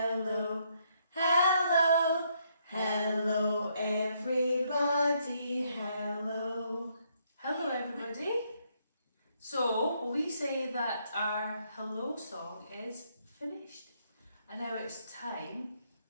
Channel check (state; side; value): inverted; both; correlation -0.73